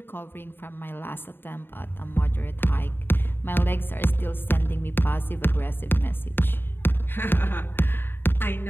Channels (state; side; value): late; right; 0.10 ms